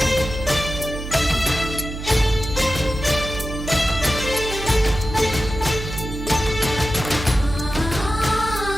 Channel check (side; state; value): right; noise; hum, 7 dB below the sound